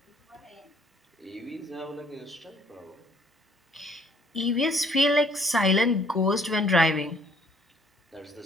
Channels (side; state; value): both; normal; correlation 0.61